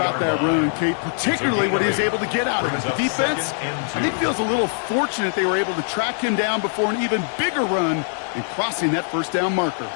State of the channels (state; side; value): silent; right; 64 dB below the other